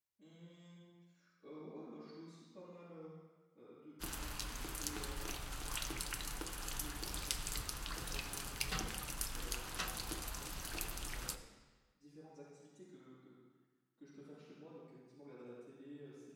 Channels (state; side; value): identical; both; correlation 1.00